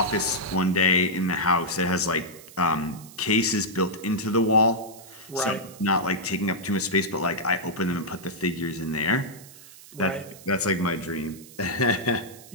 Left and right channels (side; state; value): right; noise; hiss, 19 dB below the sound